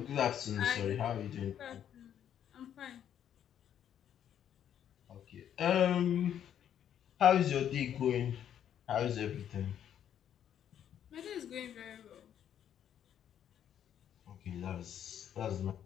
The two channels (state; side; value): quieter; right; 9.8 dB